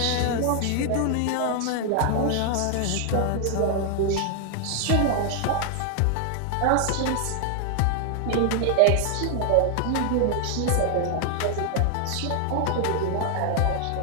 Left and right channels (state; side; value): different; both; correlation 0.00